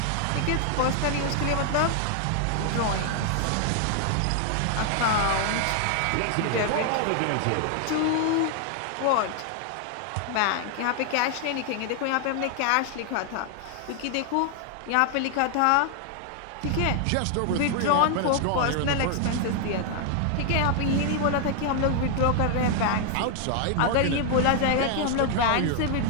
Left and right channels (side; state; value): both; different; correlation 0.00